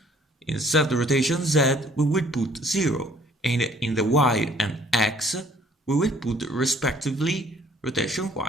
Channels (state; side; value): normal; both; correlation 0.59